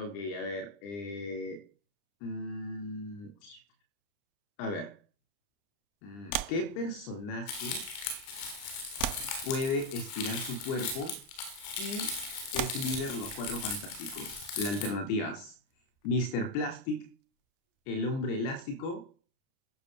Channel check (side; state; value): right; late; 30 ms